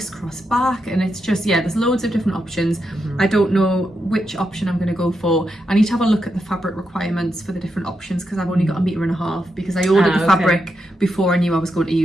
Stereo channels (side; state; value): both; normal; correlation 0.84